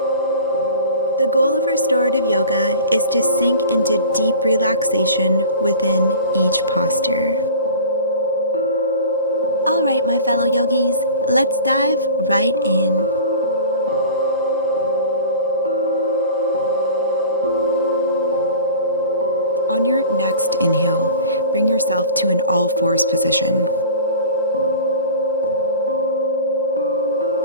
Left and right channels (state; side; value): inverted; both; correlation -0.38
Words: The goal of restorative yoga is to sink into deep relaxation within each posture. All right, my fellow yogis, let's dive right in. On your next inhale, bring yourself to an all-fours position.